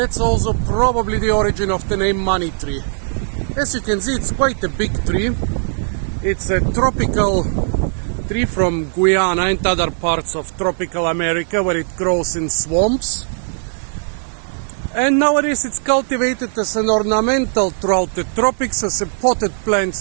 also probably the origin of the name money tree. As you can see, it's quite a big tree. It's a tropical tree from Guyana and other parts of tropical America, where it grows in swamps. And nowadays it's cultivated as an ornamental throughout the tropics, as a potted plant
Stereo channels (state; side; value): silent; left; digital silence